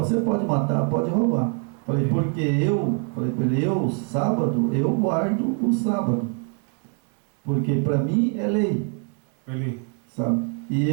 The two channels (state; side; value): quieter; left; 37.3 dB